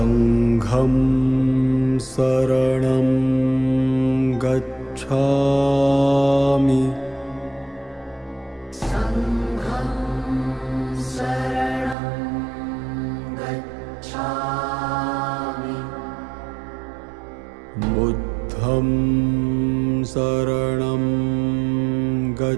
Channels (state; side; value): drops out; left; at 12.0 s